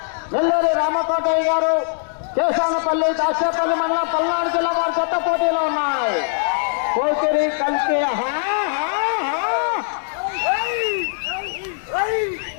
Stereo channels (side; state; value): right; silent; 65 dB below the other